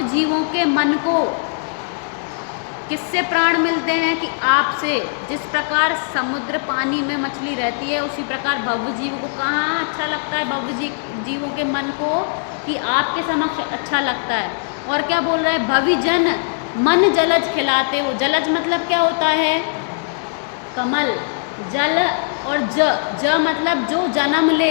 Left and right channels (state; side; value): silent; right; 63 dB below the other